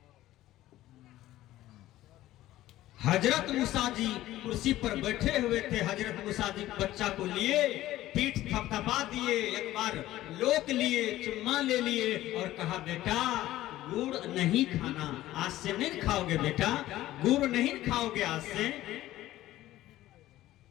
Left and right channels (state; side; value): quieter; right; 15.1 dB